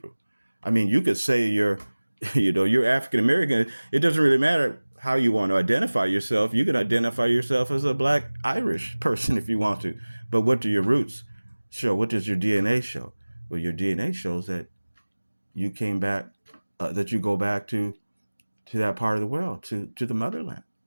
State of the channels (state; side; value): inverted; both; correlation -1.00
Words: I mean, you could say you're, you're African American. It doesn't really matter how you want to identify yourself. You can identify yourself as a Black Irish person if you want to. But what do your roots show? What does your DNA show? Well, your DNA shows that you came back, that you go back to that part of the world, to the motherland.